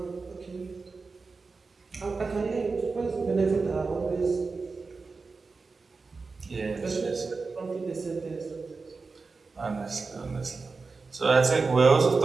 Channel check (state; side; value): quieter; left; 4.3 dB